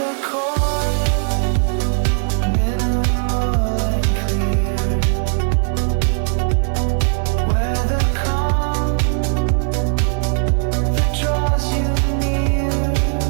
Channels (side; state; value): left; silent; digital silence